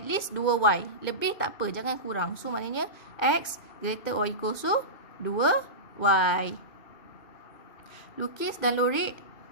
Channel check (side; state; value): right; late; 2.2 ms